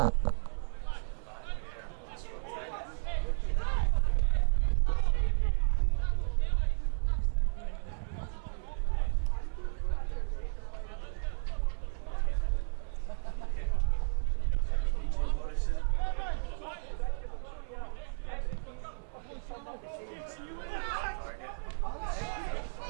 Push on the back there on Scott Taggart. Yeah, free kick for PJ Morrison. Goes long, Salmon, of course, the target. Stretches that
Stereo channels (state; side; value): silent; left; 56 dB below the other